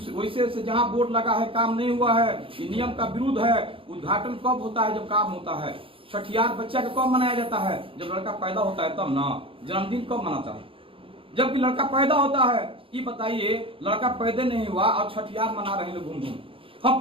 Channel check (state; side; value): late; left; 0.26 ms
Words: वैसे से जहां बोर्ड लगा है काम नहीं हुआ है, ये नियम का विरुद्ध है। उद्घाटन कब होता है, जब काम होता है। छठियार बच्चा का कब मनाया जाता है, जब लड़का पैदा होता है तब ना। जन्मदिन कब मनाता है, जबकि लड़का पैदा होता है। ये बताइए, लड़का पैदा नहीं हुआ और छठियार मना रहे लोग घूम घूम। हम